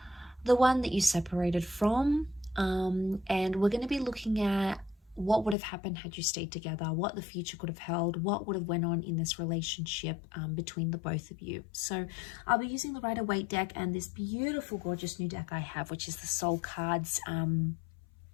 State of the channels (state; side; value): drops out; right; at 5.6 s